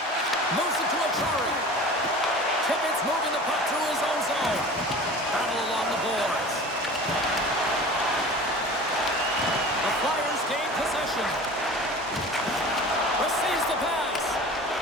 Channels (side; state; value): both; normal; correlation 0.39